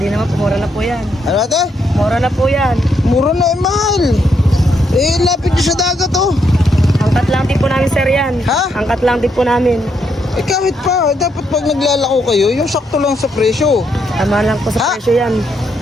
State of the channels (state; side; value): normal; both; correlation 0.77